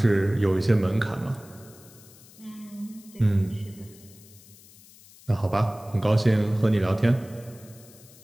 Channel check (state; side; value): noise; left; hiss, 23 dB below the sound